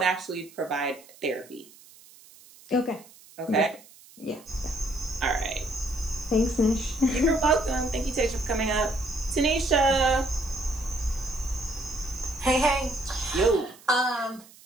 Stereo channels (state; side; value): noise; right; hiss, 23 dB below the sound